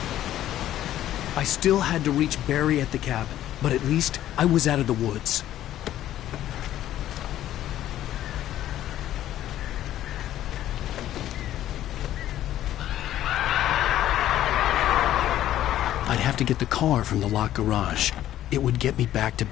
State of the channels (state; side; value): quieter; right; 12.7 dB